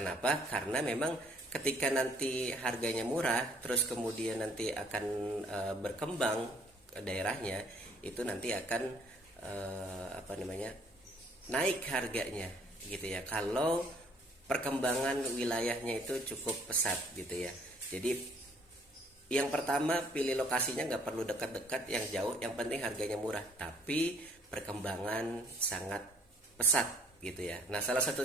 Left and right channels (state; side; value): normal; both; correlation 0.60